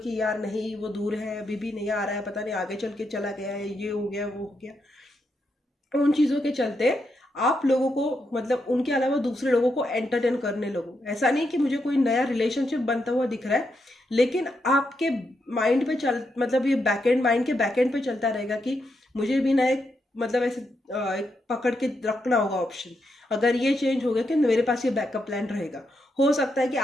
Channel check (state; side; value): normal; both; correlation 0.82